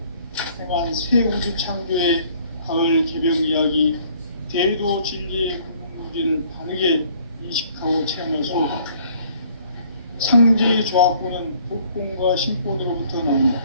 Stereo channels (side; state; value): both; inverted; correlation -0.59